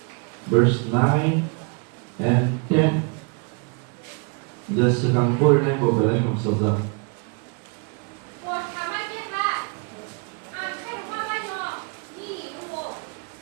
verse 9 and 10. Giờ sự càng vui này bộ về đây không sao ra.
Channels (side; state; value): left; quieter; 34.3 dB